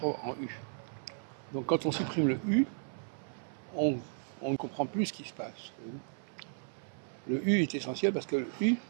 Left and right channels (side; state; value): left; silent; 55 dB below the other